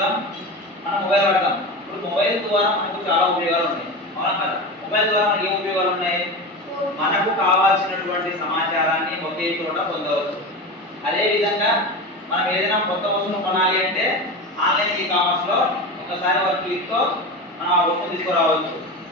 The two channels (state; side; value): normal; both; correlation 0.25